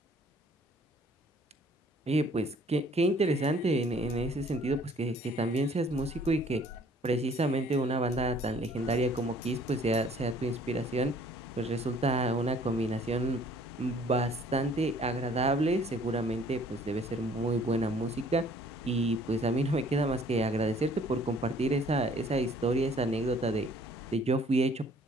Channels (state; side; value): normal; both; correlation 0.57